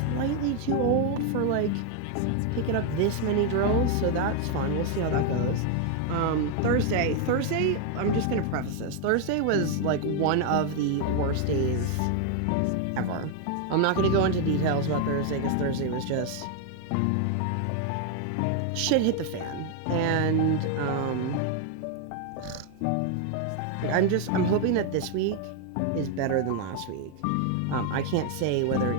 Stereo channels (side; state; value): both; different; correlation 0.01